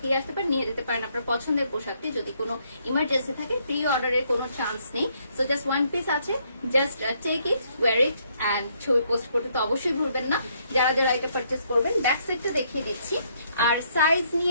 আসতে পারেন, নিয়ে যেতে পারেন আপনার পছন্দের পোশাকটি। যদি কোনো ইমার্জেন্সি থাকে, প্রি অর্ডারের কোনো চান্স নেই। সো জাস্ট ওয়ান পিস আছে, just take it, wear it and ছবি পোস্ট করতে তো অবশ্যই ভুলবেন না যারা যারা এটা পারচেস করবেন। ব্যাক সাইডটা দেখিয়ে দিচ্ছি। আর সাইজ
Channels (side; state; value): both; inverted; correlation -0.71